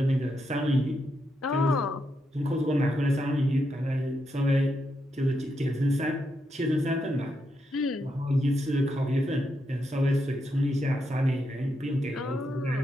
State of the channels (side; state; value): both; normal; correlation 0.82